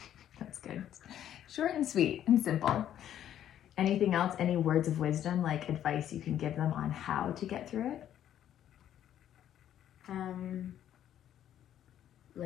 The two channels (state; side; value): quieter; right; 10.9 dB